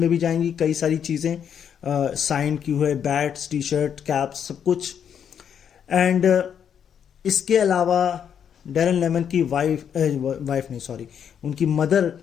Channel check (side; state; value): right; quieter; 8.3 dB